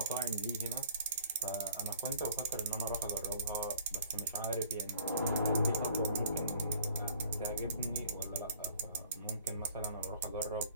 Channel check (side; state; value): both; inverted; correlation -0.54